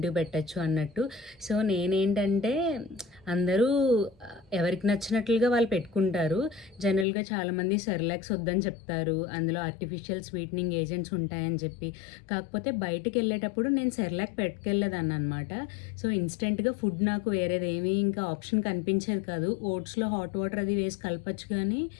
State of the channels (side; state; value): right; drops out; at 7.1 s